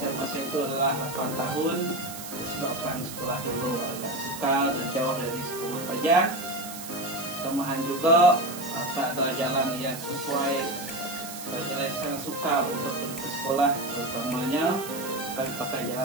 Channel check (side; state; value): right; noise; hiss, 11 dB below the sound